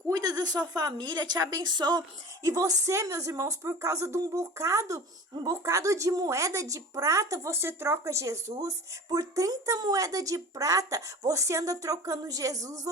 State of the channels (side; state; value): both; normal; correlation 0.37